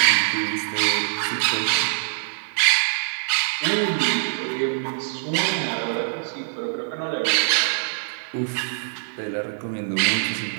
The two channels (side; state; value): left; silent; digital silence